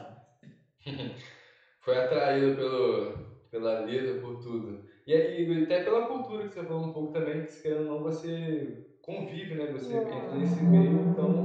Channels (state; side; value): identical; both; correlation 1.00